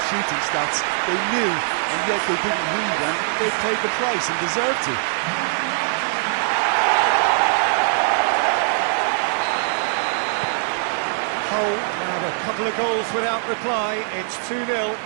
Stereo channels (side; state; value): left; silent; digital silence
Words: shooting stats. They knew, and yet they didn't read, and they've paid the price and deserve to. Hull had a couple of goals without reply. It's 2-0.